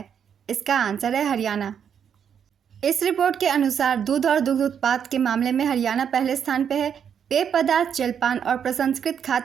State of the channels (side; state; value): left; quieter; 8.0 dB